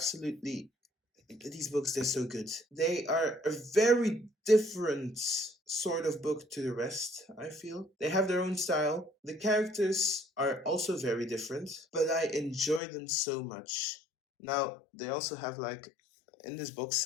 these books, they're so good. They are a very different sort of book to the rest, I feel. They have their own style. The characters are also very different, but I enjoy them so much. Now, they also have like in this box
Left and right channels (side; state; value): right; drops out; at 12.8 s